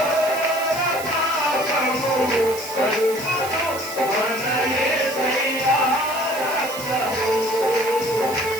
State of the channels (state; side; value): noise; right; hiss, 11 dB below the sound